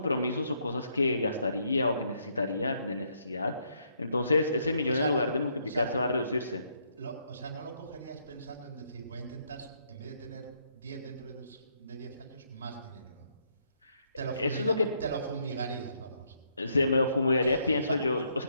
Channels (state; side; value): inverted; both; correlation -0.73